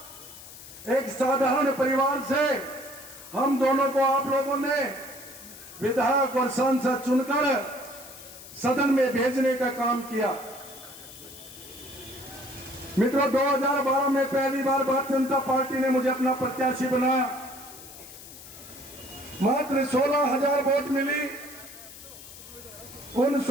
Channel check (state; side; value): noise; left; hiss, 16 dB below the sound